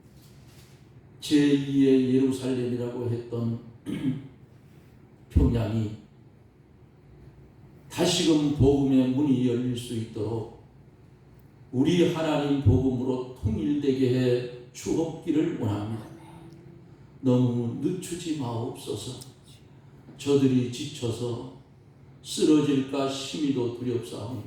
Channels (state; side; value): identical; both; correlation 1.00